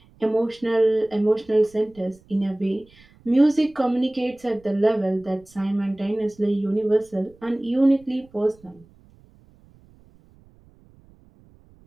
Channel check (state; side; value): noise; right; rumble, 28 dB below the sound